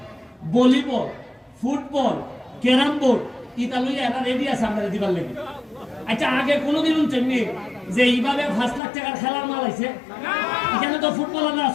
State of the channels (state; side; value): drops out; right; at 8.8 s